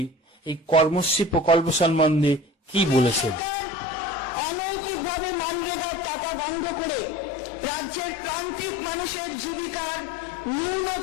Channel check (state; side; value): normal; both; correlation 0.39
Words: এই কর্মশ্রী প্রকল্প সম্বন্ধে কি বলেছেন। অনৈতিকভাবে মানরেগার টাকা রাজ্যের প্রান্তিক মানুষের জীবিকার